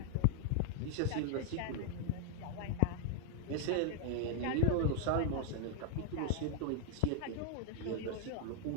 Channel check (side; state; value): both; different; correlation 0.00